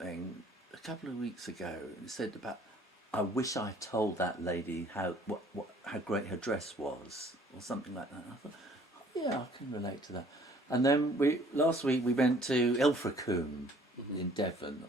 a couple of weeks ago. It said about, I wish I told that lady how great her dress was, or something like that. And I thought, I can relate to that. And then last week we went to Ilfracombe in Devon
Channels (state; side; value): normal; both; correlation 0.57